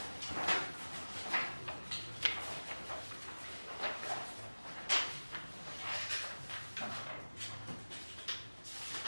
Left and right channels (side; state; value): both; inverted; correlation -1.00